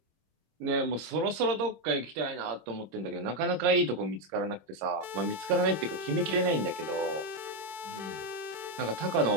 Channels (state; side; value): late; left; 26 ms